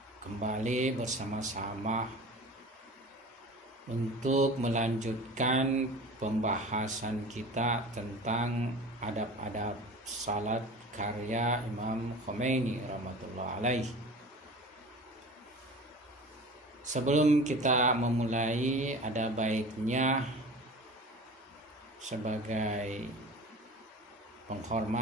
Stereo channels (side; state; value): both; normal; correlation 0.38